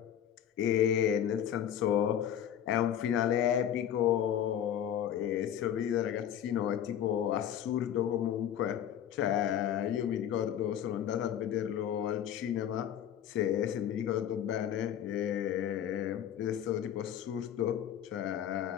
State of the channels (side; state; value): right; quieter; 10.0 dB